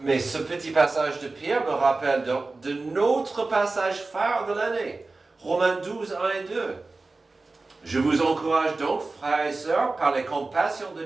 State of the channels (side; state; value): left; quieter; 3.5 dB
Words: mais ce petit passage de Pierre me rappelle de notre passage phare de l'année, Romains 12, 1 et 2. Je vous encourage donc, frères et sœurs, par les compassions de